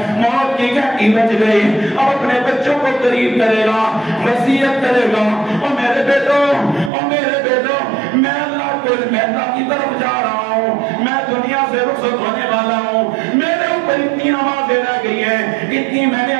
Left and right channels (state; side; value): drops out; left; at 6.9 s